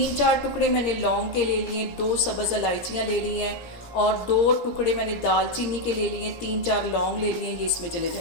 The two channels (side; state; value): right; late; 17 ms